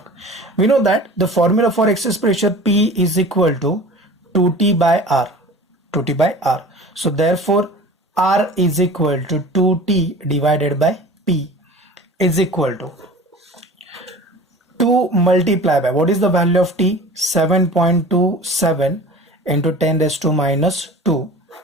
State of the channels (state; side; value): normal; both; correlation 0.40